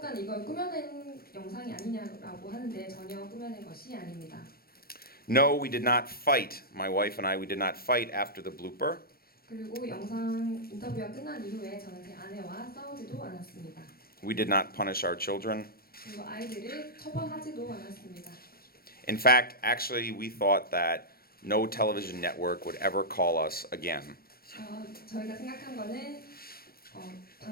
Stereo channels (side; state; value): right; late; 0.44 ms